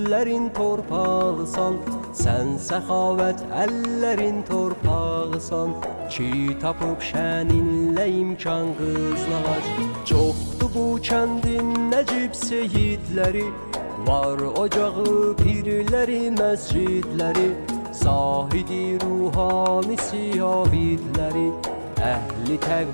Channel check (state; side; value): inverted; both; correlation -1.00